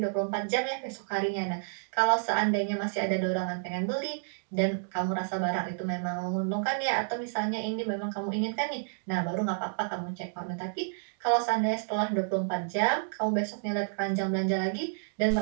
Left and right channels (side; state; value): left; silent; digital silence